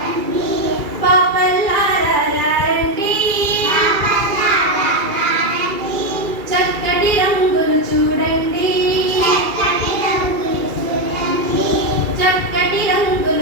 చక్కటి రంగులు చూడండి, చక్కటి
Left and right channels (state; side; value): late; left; 2.3 ms